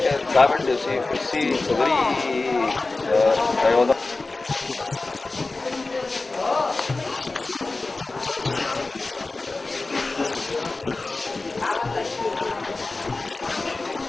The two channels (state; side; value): quieter; right; 3.4 dB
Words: urinaire, une hystérectomie, 21 hernies et une opération des hémorroïdes. Cette fois, 2 cas sortent de l'ordinaire. Cette toute jeune fille de 12 ans, opérée par le docteur Ashwani Gupta.